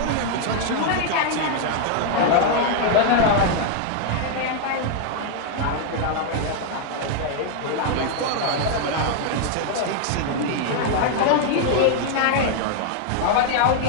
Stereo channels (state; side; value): different; both; correlation 0.00